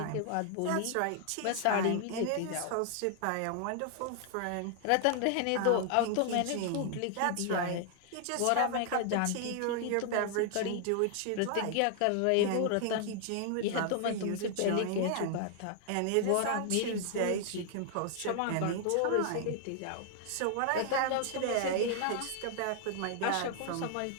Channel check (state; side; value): different; both; correlation 0.00